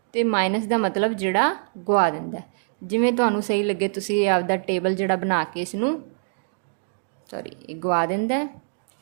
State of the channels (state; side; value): silent; left; 62 dB below the other